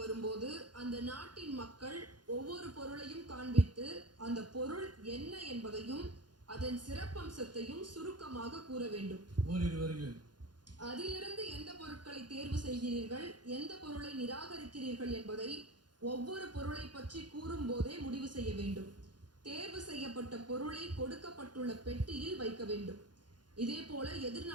வரும்போது அந்த நாட்டின் மக்கள் ஒவ்வொரு பொருளையும் காண்பித்து அந்த பொருள் என்ன என்பதையும் அதன் சிறப்பம்சத்தையும் சுருக்கமாக கூற வேண்டும். அதிலிருந்து எந்த பொருட்களை தேர்வு செய்கிறீர்கள், எந்த பொருளை நிராகரிக்கிறீர்கள் என்பதை ஒவ்வொரு பொருளை பற்றி கூறும் போதே முடிவு செய்ய வேண்டும். தேர்வு செய்யப்பட்ட பொருளை கொடுக்கப்பட்டுள்ள பெட்டியில் வைக்க வேண்டும். இதே போல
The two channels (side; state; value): left; late; 0.70 ms